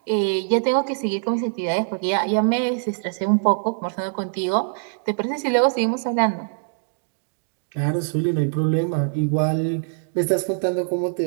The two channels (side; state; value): left; silent; digital silence